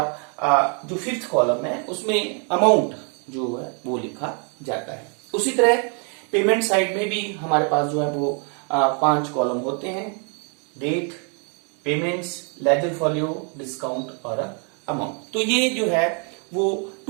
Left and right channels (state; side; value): quieter; left; 40.0 dB